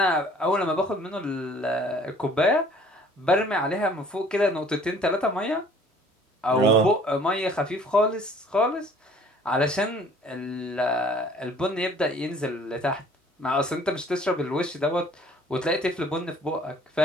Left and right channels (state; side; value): normal; both; correlation 0.54